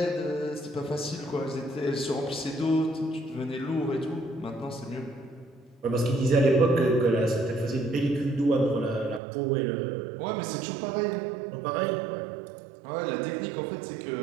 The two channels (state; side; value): drops out; left; at 9.2 s